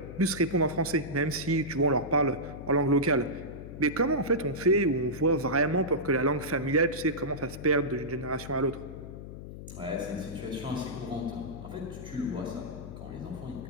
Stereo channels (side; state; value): left; noise; hum, 11 dB below the sound